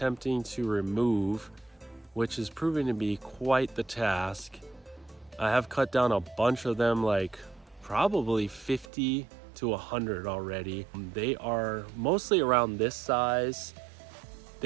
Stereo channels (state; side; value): drops out; left; at 8.9 s